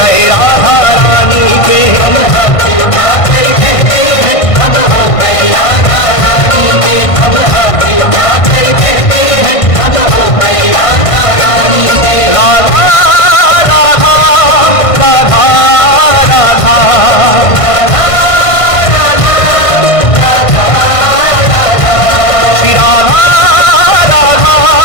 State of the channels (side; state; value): right; late; 1.5 ms